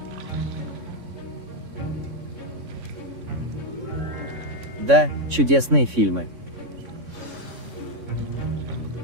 Да, чудесные фильмы.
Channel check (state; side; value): late; left; 3.6 ms